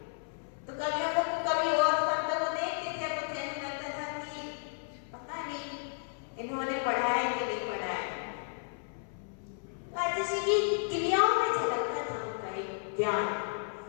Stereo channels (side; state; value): right; silent; 56 dB below the other